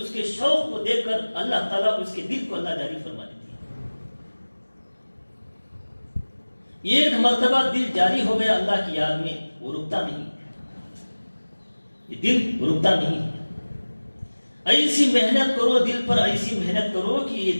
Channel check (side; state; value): both; inverted; correlation -1.00